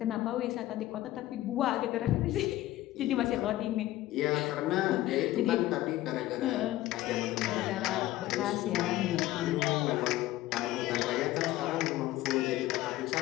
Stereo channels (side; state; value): right; quieter; 15.8 dB